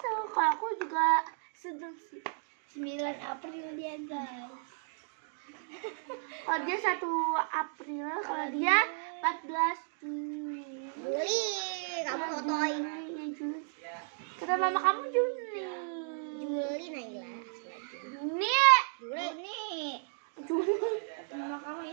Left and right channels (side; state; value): left; silent; digital silence